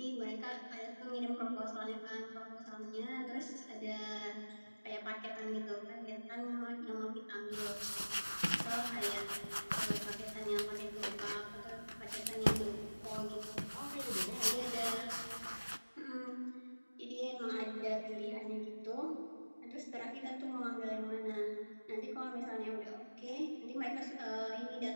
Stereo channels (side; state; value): both; inverted; correlation -1.00